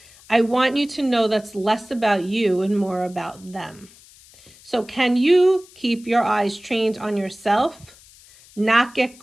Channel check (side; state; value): left; noise; hiss, 24 dB below the sound